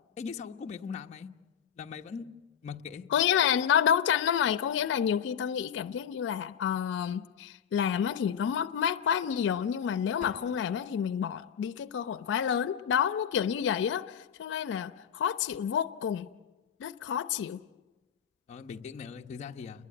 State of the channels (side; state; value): right; quieter; 8.3 dB